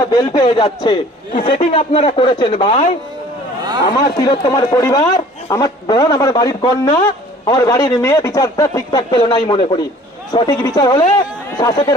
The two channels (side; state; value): both; normal; correlation 0.51